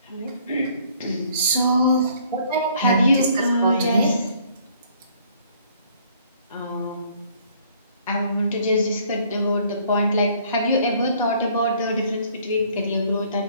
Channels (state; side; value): inverted; both; correlation -0.61